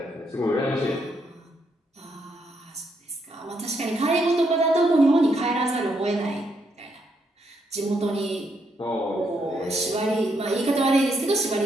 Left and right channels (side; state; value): both; normal; correlation 0.76